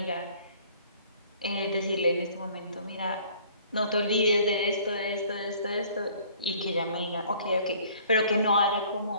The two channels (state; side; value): inverted; both; correlation -0.55